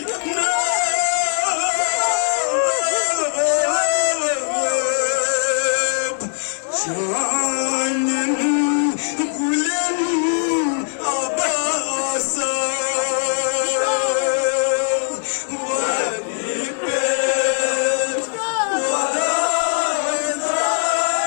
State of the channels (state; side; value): silent; right; digital silence